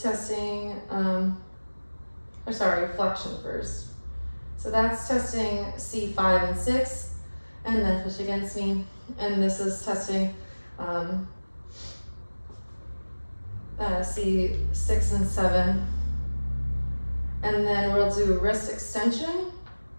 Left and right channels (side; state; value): both; inverted; correlation -1.00